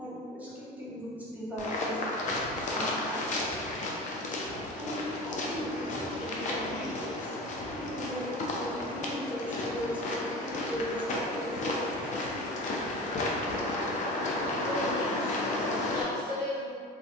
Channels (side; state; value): both; normal; correlation 0.32